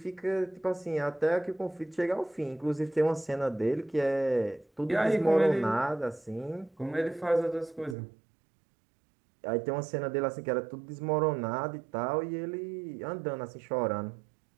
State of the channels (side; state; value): left; drops out; at 8.0 s